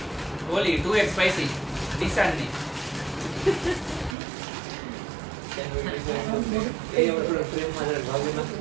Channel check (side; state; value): left; drops out; at 4.2 s